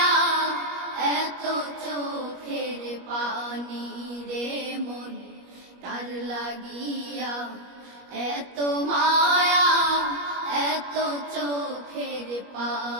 এত চোখের পানি রে মন কার লাগিয়া এত মায়া এত চোখের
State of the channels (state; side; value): late; left; 21 ms